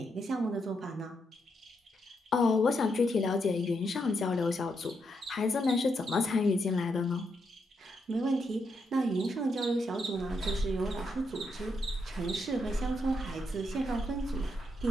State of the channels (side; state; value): both; normal; correlation 0.80